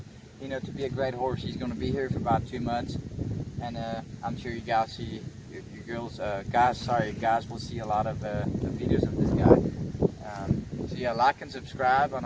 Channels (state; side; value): identical; both; correlation 1.00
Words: to be a great horse. He's gonna be here for about 2 months, and I'm sure you guys see guys will see a lot of the videos of this guy. So yeah, like and subscribe on